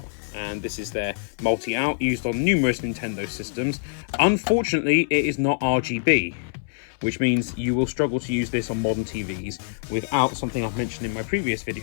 And this is their multi-out, used on numerous Nintendo systems. Unfortunately, it is not RGB, which means you will struggle to use this on modern TVs without something I've mentioned in my previous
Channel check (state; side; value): silent; right; 62 dB below the other